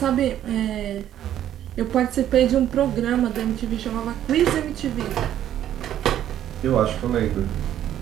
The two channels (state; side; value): quieter; left; 11.3 dB